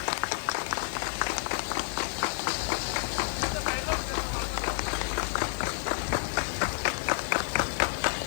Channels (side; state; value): right; silent; digital silence